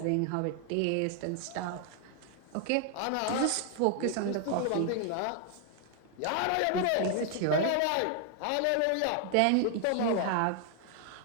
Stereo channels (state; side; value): different; both; correlation 0.00